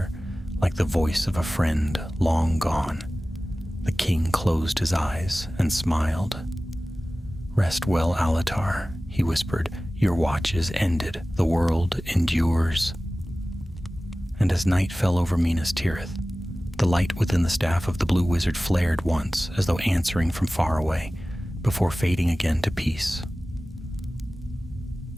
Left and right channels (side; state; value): both; normal; correlation 0.97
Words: like the voice of a friend long gone. The king closed his eyes and smiled. "Rest well, Alatar," he whispered. "Your watch is ended. The world endures." And as night fell over Minas Tirith, the light within the staff of the blue wizard flared once, as though answering from far away, before fading again to peace.